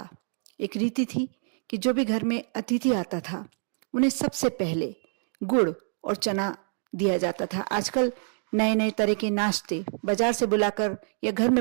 एक रीति थी कि जो भी घर में अतिथि आता था उन्हें सबसे पहले गुड़ और चना दिया जाता था। आजकल नए नए तरह के नाश्ते बाजार से बुलाकर या घर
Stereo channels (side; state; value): left; silent; 56 dB below the other